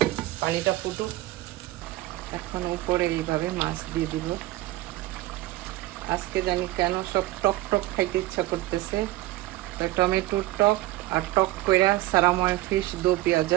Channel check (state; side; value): quieter; left; 17.2 dB